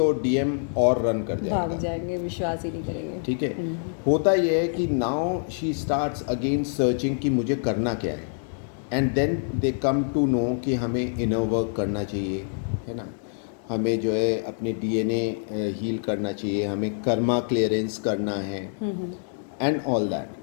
डीएम और रन कर जाएगा, भाग जाएंगे, विश्वास ही नहीं करेंगे, ठीक है। होता यह है कि now she starts again searching कि मुझे करना क्या है, and then they come to know कि हमें इनर वर्क करना चाहिए, है ना, हमें जो है अपने डीएनए हील करना चाहिए, हमें कर्मा क्लियरेंस करना है and all that.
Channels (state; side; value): silent; right; digital silence